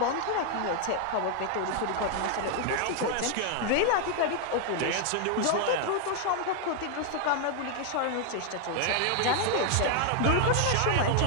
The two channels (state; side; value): different; both; correlation 0.00